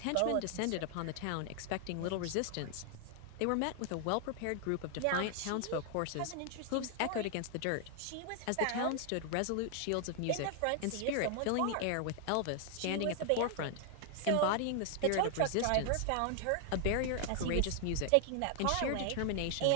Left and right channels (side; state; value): both; different; correlation 0.00